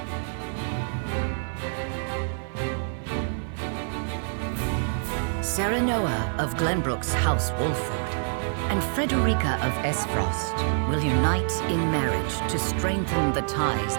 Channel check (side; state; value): left; silent; 61 dB below the other